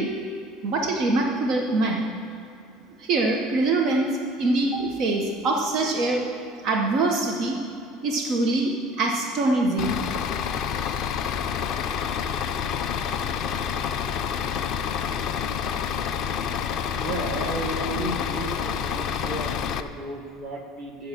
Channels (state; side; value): normal; both; correlation 0.44